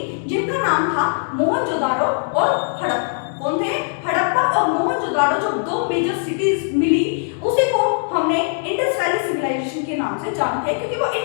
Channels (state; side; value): silent; right; 65 dB below the other